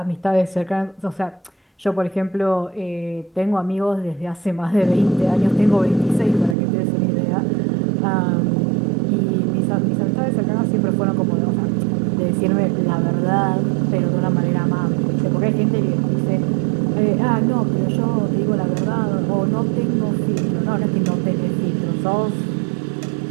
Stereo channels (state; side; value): drops out; left; at 6.6 s